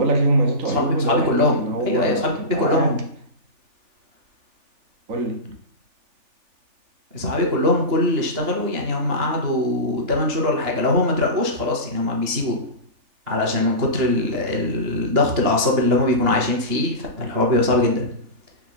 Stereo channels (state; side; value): late; left; 3.4 ms